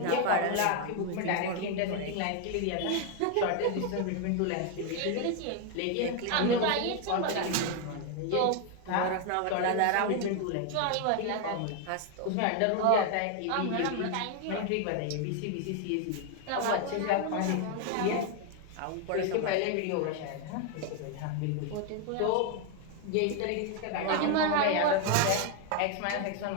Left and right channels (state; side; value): different; both; correlation 0.01